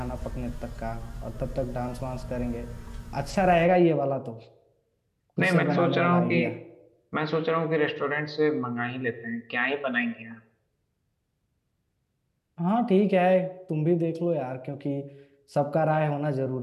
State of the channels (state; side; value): identical; both; correlation 1.00